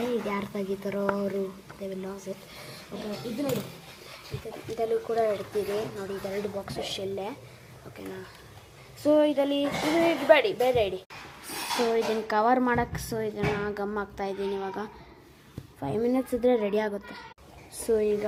ಇದು ಯಾರು ತೆಗಿತಾರೋ ಅವರು they will loss it. Okay, ಇದು ನೋಡಿ, ಇದರಲ್ಲೂ ಕೂಡ ಇಡ್ತೀವಿ ನೋಡಿ. ಇದೆರಡು ಬಾಕ್ಸು ಶೆಲ್ಲೆ. ಓಕೆನಾ, ಸೊ ಇದರಲ್ಲಿ ಇದು ಇಡಬೇಡಿ, ಬೇರೆ ಇಡಿ. ಸೊ ಇದನ್ನು ಕವರ್ ಮಾಡೋಕ್ಕೆ ಸೊ ಇದನ್ನು ಗಮ್ ಹಾಕ್ತಾಯಿದ್ದೀನಿ. ಇವಾಗ 5 ಮಿನಿಟ್ಸ್ ಇದ್ದರೆ ರೆಡಿ ಆಗುತ್ತೆ. ಸೊ ಈಗ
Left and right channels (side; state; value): both; identical; correlation 1.00